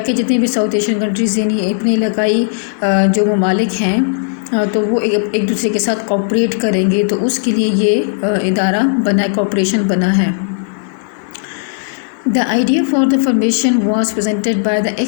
जितने भी साउथ एशियन कंट्रीज़ यानी अपने इलाकाई जो ममालिक हैं तो वो एक दूसरे के साथ कोऑपरेट करेंगे, तो उसके लिए ये इदारा बना है, कोऑपरेशन बना है। The idea for the formation was presented by the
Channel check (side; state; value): right; silent; digital silence